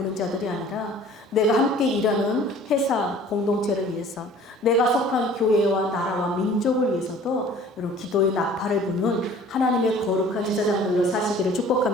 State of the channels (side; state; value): both; normal; correlation 0.49